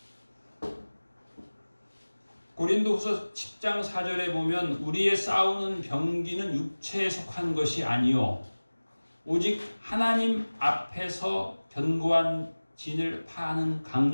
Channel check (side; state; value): both; inverted; correlation -1.00